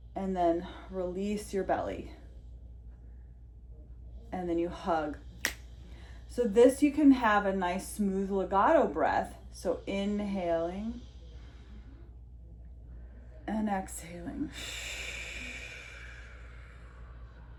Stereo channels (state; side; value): identical; both; correlation 1.00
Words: and then release your belly. And then you hug. So this, you can have a nice smooth legato breath. So inhaling and exhaling.